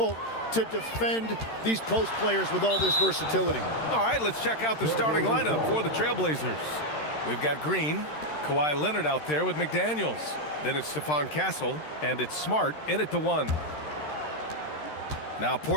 to defend these post players with all this versatility. All right, let's check out the starting lineup for the Trailblazers. We've got Green, Kawhi Leonard out there with McDaniels. Then it's Stephon Castle, and it's Smart in at the 1. Now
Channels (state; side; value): late; right; 13 ms